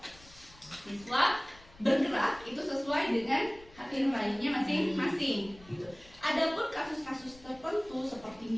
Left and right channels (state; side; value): noise; left; rumble, 23 dB below the sound